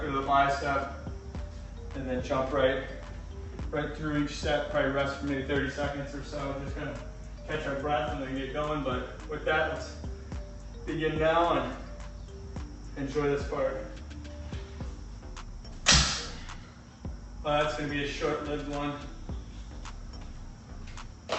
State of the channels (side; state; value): both; identical; correlation 1.00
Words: to the bicep, and then jump right through each set. Probably rest for maybe 30 seconds or so. Just gonna catch our breath and then get going. But with that, let's begin now and enjoy this part. Well, that's gonna be a short-lived one.